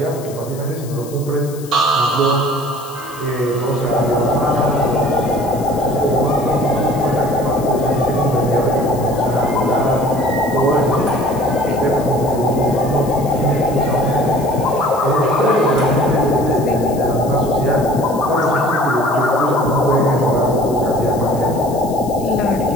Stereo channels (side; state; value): left; noise; hiss, 18 dB below the sound